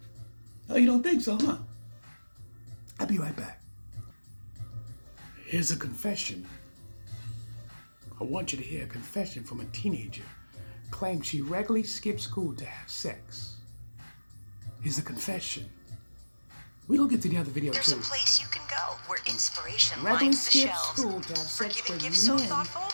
Oh, you don't think so, huh? I'll be right back. Here's a confession. I want you to hear a confession from a teenager. Claims she regularly skips school to have sex. Here's a confession. We're going to get to the other video There's too. a place you can go where inspiration Regularly lines the skip shelves. school to have For sex giving with gifts so men thoughtful,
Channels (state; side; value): inverted; both; correlation -1.00